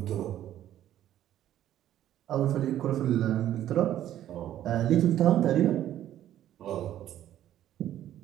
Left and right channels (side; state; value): left; quieter; 12.1 dB